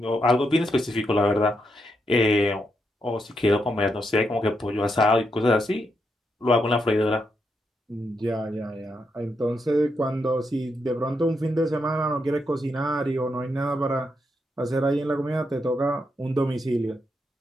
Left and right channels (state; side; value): normal; both; correlation 0.81